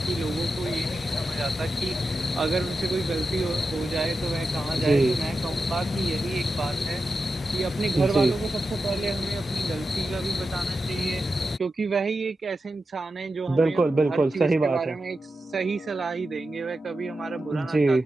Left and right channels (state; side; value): normal; both; correlation 0.90